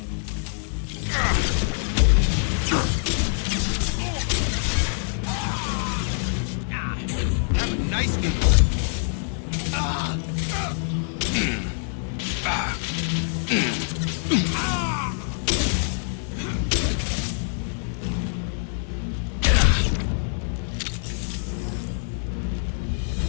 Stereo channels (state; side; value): silent; right; digital silence